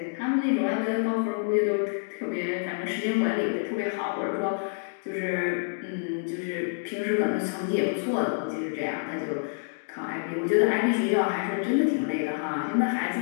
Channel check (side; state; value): right; silent; digital silence